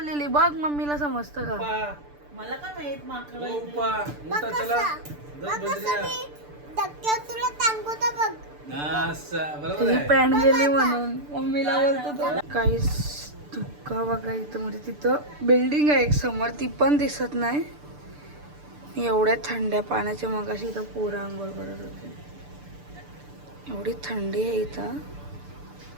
बघ मम्मीला समजतं का. मला काय माहित माकड धक्क्यात तुला टांगवता बघ. तुझी पॅन्ट गेली म्हणून मम्मीला बोलतो तो. काहीच धुक्का बघा इथं. म्हणजे तिथं बिल्डिंग आहे एक समोर ती पण दिसत नाही. एवढ्या थंड्या पाण्याच्या मगाशी इथं पोरं आंघोळ करत होते. एवढी थंडी आहे इथं.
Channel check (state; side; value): late; left; 6.8 ms